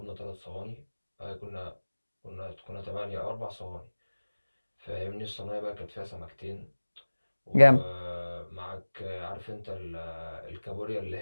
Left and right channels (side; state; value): both; inverted; correlation -1.00